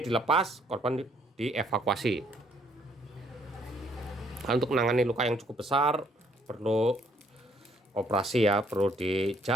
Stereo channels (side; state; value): both; normal; correlation 0.66